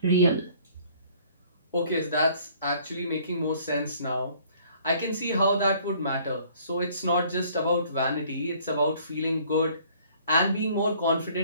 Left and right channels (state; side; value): inverted; both; correlation -0.57